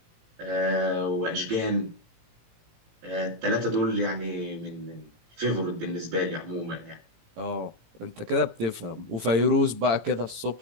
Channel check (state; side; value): late; left; 18 ms